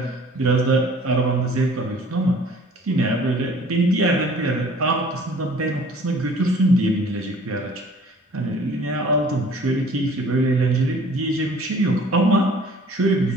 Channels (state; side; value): normal; both; correlation 0.51